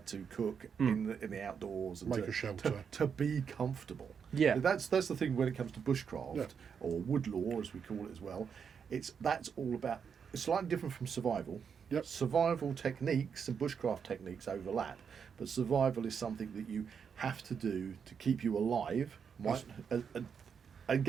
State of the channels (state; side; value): quieter; left; 6.8 dB